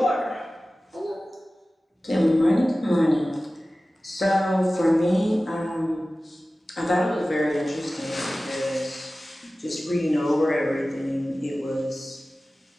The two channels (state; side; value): normal; both; correlation 0.96